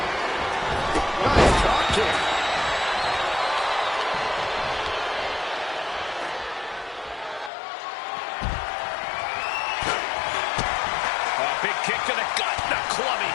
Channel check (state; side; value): drops out; right; at 7.5 s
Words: Nice drop kick. A big kick to the gut, the